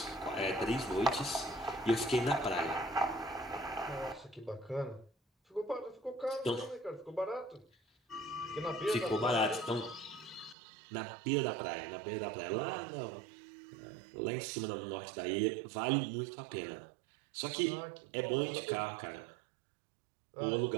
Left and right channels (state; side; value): drops out; left; at 10.6 s